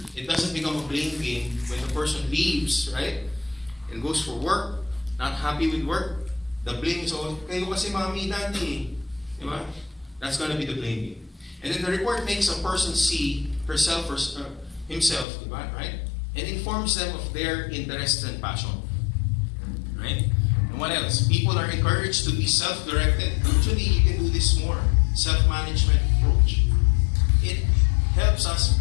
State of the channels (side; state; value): right; drops out; at 15.2 s